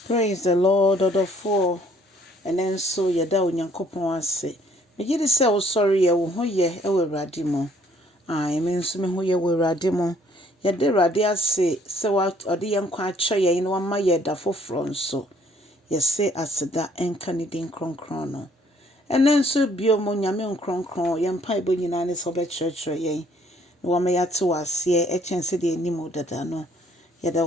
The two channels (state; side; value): normal; both; correlation 0.62